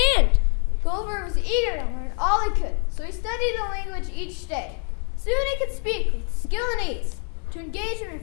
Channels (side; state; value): right; quieter; 38.8 dB